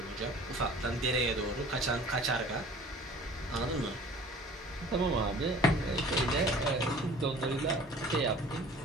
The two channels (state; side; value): normal; both; correlation 0.47